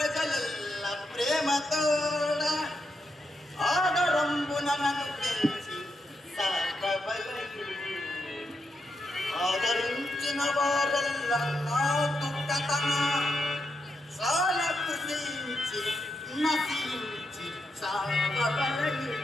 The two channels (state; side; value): normal; both; correlation 0.83